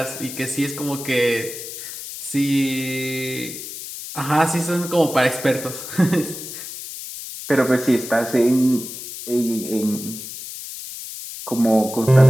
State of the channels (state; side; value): noise; left; hiss, 10 dB below the sound